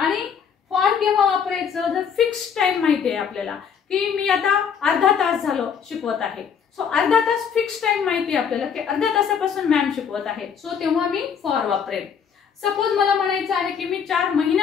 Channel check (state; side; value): quieter; right; 7.1 dB